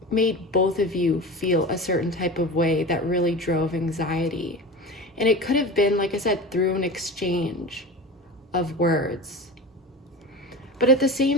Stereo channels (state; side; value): normal; both; correlation 0.30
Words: made both of you feel a certain type of way that really drove anxiety. And it could have been, like I said, through an exchange of words. But at the